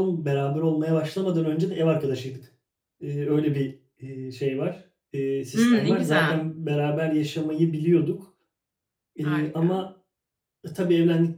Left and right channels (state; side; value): identical; both; correlation 1.00